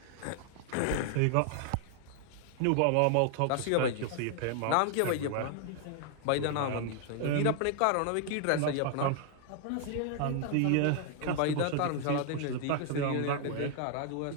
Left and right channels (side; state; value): both; different; correlation 0.00